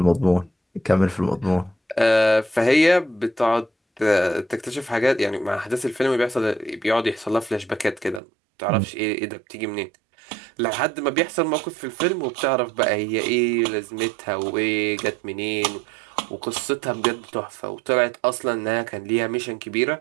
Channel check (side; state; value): left; drops out; at 8.2 s